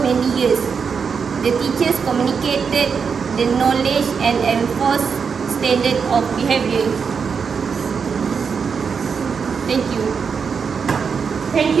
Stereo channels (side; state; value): left; quieter; 6.0 dB